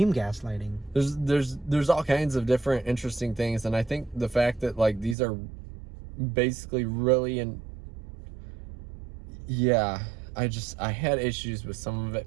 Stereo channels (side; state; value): left; drops out; at 5.2 s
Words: gaslighting. There's all kinds of different interesting things, and I think the fact that like these are basically really I had issues with some of